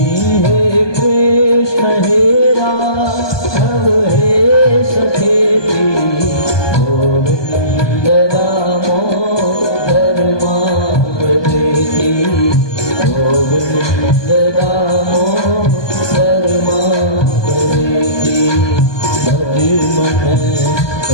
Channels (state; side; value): late; right; 1.2 ms